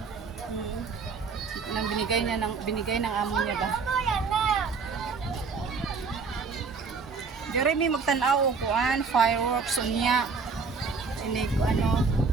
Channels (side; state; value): left; quieter; 4.9 dB